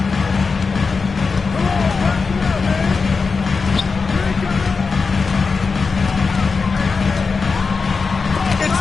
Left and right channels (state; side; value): quieter; right; 4.7 dB